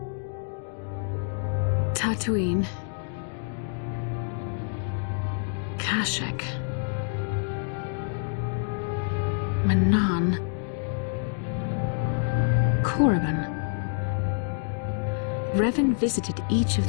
Tatooine. Kashyyyk. Manaan. Korriban. Revan visited each of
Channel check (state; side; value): silent; right; 60 dB below the other